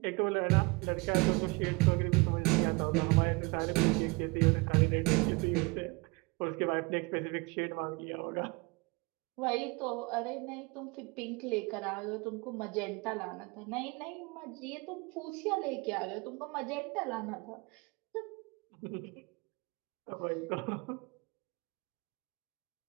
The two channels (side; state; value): left; quieter; 27.0 dB